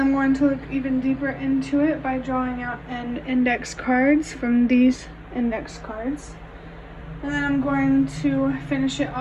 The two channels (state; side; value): identical; both; correlation 1.00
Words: I'm going to look even deeper into it by drawing out an index cards from these index cards. And then I'm going to finish it